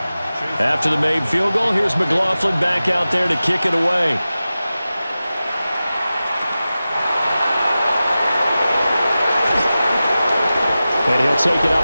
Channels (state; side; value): inverted; both; correlation -0.95